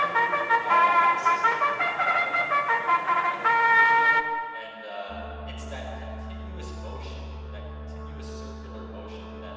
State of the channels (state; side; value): identical; both; correlation 1.00